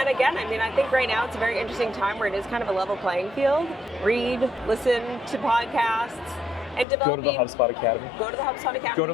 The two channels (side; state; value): right; drops out; at 6.9 s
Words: again, I think right now it's a very interesting time where it is kind of a level playing field. Read, listen to podcasts, and developing. Go to the HubSpot Academy. Go to the HubSpot